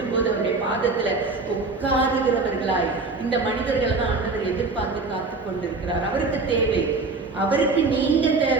போது அவருடைய பாதத்துல உட்காருகிறவர்களாய் இந்த மனிதர்கள் தான் ஆண்டவர் எதிர்பார்த்து காத்து கொண்டிருக்கிறார். அவருக்கு தேவை, அவருக்கு நீங்க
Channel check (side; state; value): left; quieter; 3.8 dB